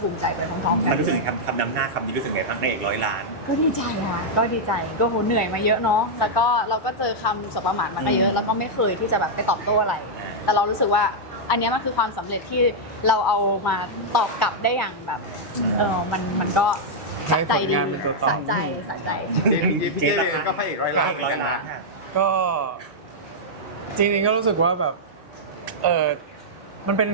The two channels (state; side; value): normal; both; correlation -0.06